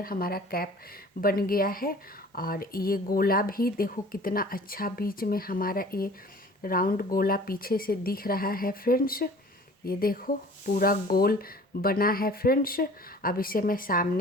हमारा कैप बन गया है। और ये गोला भी देखो कितना अच्छा बीच में हमारा ये राउंड गोला पीछे से दिख रहा है फ्रेंड्स। ये देखो पूरा गोल बना है फ्रेंड्स। अब इसे मैं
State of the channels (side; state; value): both; normal; correlation 0.47